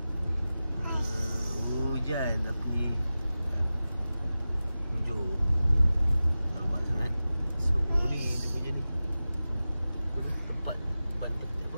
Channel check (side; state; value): both; inverted; correlation -0.95